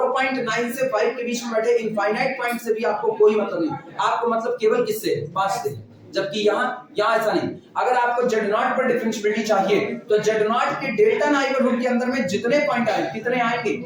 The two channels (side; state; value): both; identical; correlation 1.00